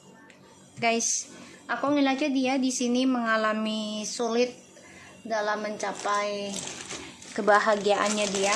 guys, aku ngeliatnya dia di sini mengalami sulit dalam mencapai kebahagiaannya dia,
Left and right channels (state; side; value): identical; both; correlation 1.00